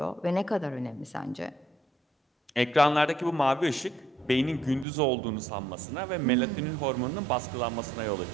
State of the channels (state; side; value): drops out; left; at 4.9 s